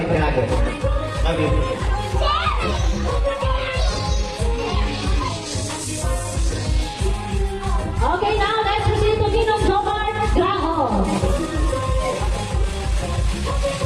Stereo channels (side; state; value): both; identical; correlation 1.00